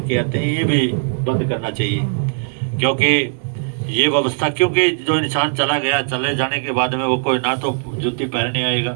आते हैं, ये भी बंद करना चाहिए। क्योंकि ये व्यवस्था, क्योंकि जो इंसान चला गया, चले जाने के बाद में वो कोई ना तो जूती पहनने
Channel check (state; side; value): silent; left; 64 dB below the other